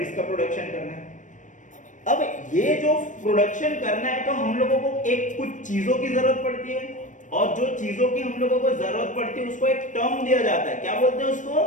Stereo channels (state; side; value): late; right; 0.37 ms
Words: का प्रोडक्शन करना है। अब ये जो प्रोडक्शन करना है तो हम लोगों को एक कुछ चीजों की जरूरत पड़ती है, और जो चीजों की हम लोगों को जरूरत पड़ती है उसको एक टर्म दिया जाता है। क्या बोलते हैं उसको?